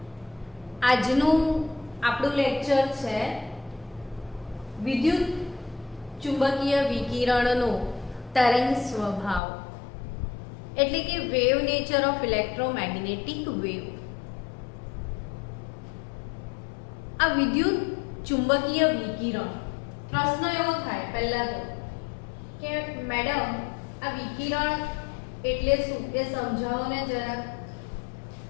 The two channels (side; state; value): right; drops out; at 9.4 s